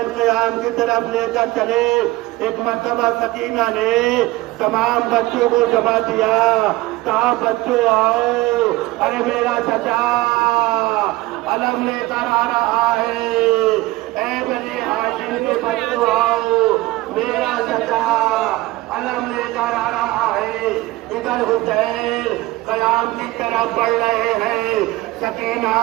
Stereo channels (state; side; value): quieter; left; 19.3 dB